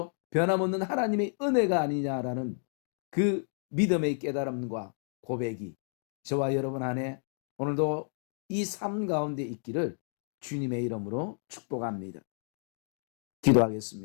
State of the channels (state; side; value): silent; right; digital silence